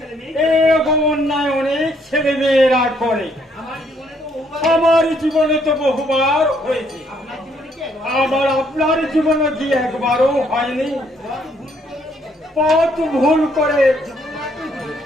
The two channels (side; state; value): both; normal; correlation 0.68